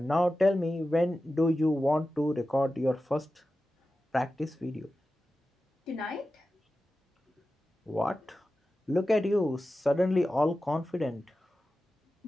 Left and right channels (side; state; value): both; normal; correlation 0.93